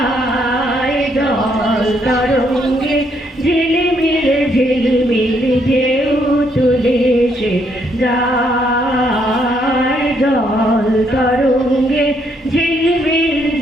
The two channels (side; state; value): both; normal; correlation 0.72